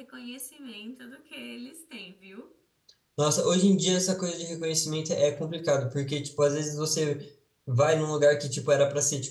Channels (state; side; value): identical; both; correlation 1.00